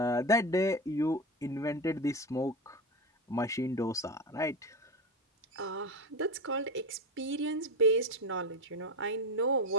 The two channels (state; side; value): normal; both; correlation 0.19